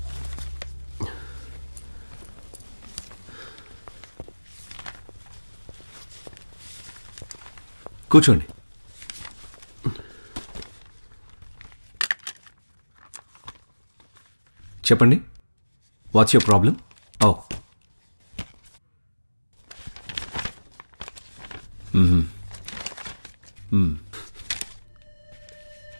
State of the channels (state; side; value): inverted; both; correlation -1.00